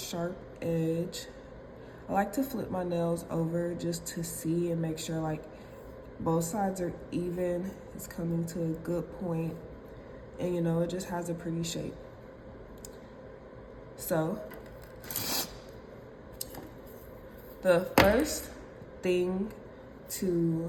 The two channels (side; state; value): both; identical; correlation 1.00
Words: edge. I like to flip my nails over just to see and make sure like both sides are even. It's coming to a good point, and it just has a pretty shape. So the first thing to